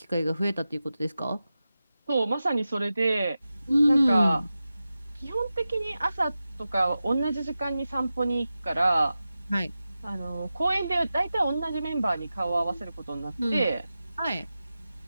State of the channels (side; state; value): both; inverted; correlation -0.93